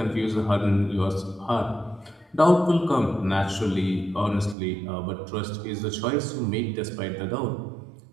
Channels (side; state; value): left; drops out; at 4.5 s